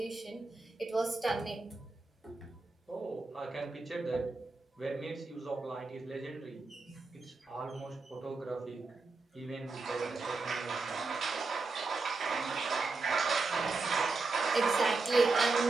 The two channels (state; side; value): quieter; left; 3.8 dB